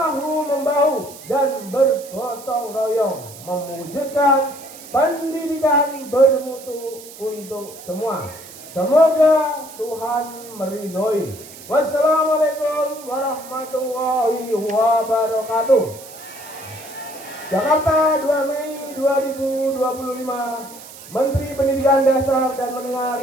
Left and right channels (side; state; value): right; noise; hiss, 17 dB below the sound